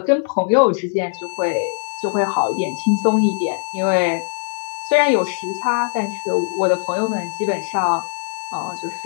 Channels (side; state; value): right; silent; digital silence